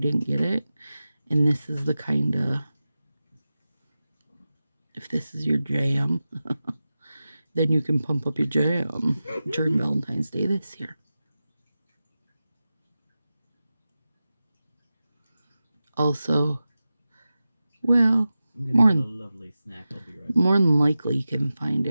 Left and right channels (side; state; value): both; inverted; correlation -0.94